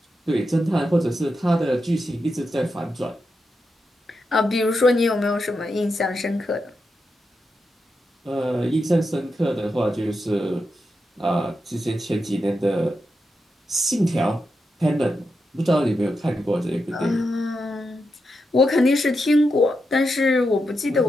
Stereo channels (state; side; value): normal; both; correlation 0.86